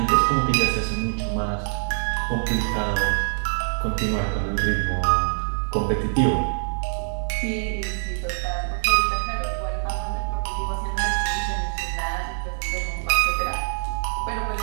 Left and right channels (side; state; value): left; silent; digital silence